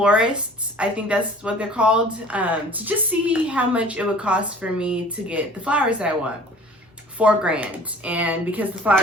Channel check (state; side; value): normal; both; correlation 0.47